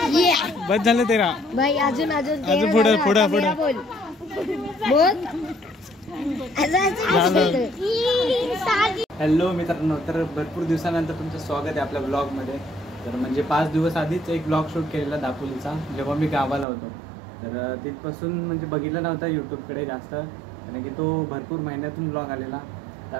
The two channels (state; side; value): drops out; left; at 16.7 s